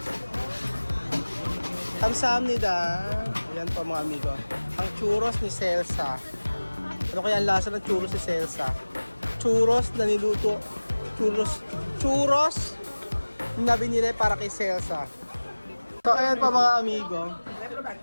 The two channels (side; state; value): both; inverted; correlation -1.00